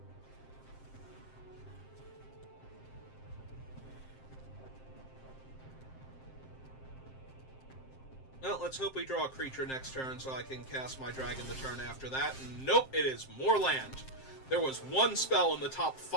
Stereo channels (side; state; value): right; late; 7.6 ms